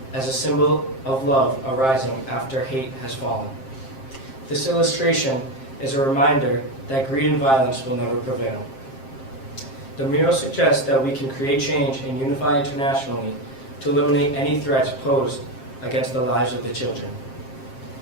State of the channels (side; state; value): right; late; 7.5 ms